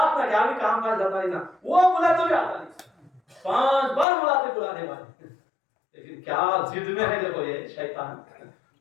میں کیا بھی کام کاج جاتا نہیں نا، وہ بولے تو بھی آتا نہیں. 5 بار بلاتے بلانے والے، لیکن کیا ضد میں ہے دیکھو یہ شیطان،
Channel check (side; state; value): right; drops out; at 4.0 s